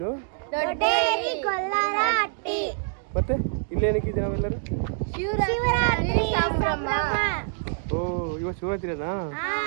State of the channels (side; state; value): left; silent; digital silence